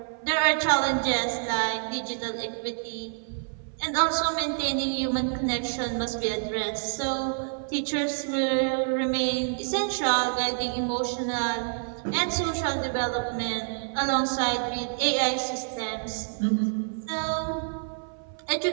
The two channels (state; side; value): silent; left; 60 dB below the other